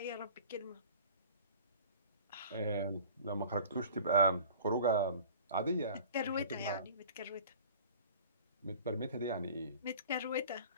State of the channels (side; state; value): both; inverted; correlation -0.44